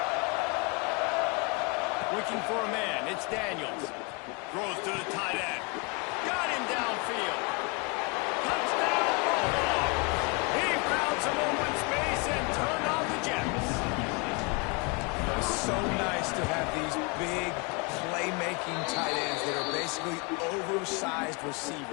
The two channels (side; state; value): right; quieter; 30.5 dB